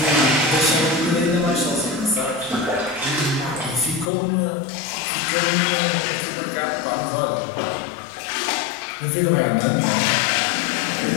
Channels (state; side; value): drops out; right; at 4.1 s